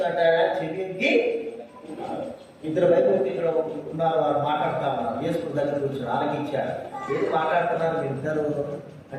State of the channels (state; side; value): identical; both; correlation 1.00